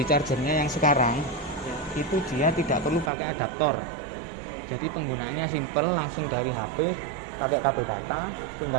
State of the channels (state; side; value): drops out; left; at 3.1 s